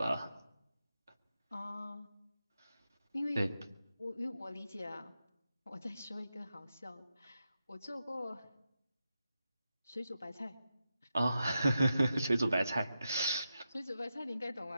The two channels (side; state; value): both; inverted; correlation -0.88